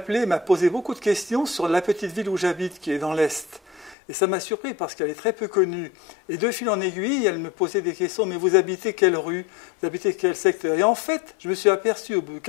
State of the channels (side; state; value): right; drops out; at 4.0 s